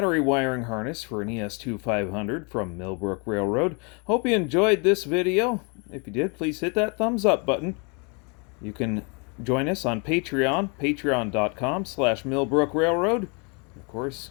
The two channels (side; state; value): right; quieter; 33.3 dB